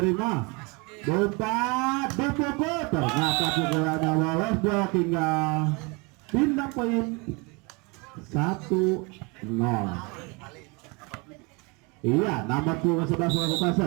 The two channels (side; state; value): left; quieter; 29.1 dB